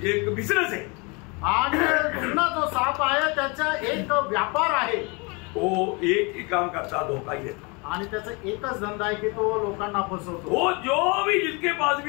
एक बिजनेस है. आणि जुना जो साप आहे त्याचा एक व्यापार आहे. वो एक ही काम करता, धोखा ही देता. आणि त्याचा एकच धंदा आहे की तो लोकांना फसवतो. वो जो भी जिसके पास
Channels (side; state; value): right; quieter; 29.8 dB